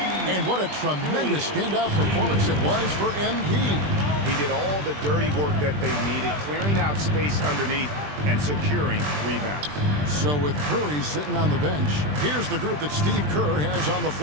And what a tremendous standout performance it was for MP. He did all the dirty work that they needed, clearing out space underneath and securing rebounds. So with Curry sitting on the bench, here's the group that Steve Kerr has on the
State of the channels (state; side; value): late; left; 20 ms